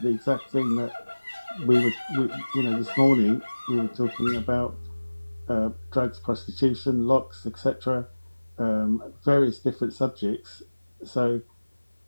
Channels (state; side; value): inverted; both; correlation -1.00